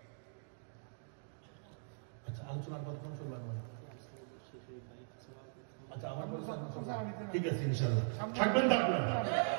আচ্ছা, আলোচনার কথা কোন শুনলাম? আচ্ছা, আমার ঠিক আছে, ইনশাআল্লাহ থাকবেন। থাকবেন,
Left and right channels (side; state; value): left; silent; digital silence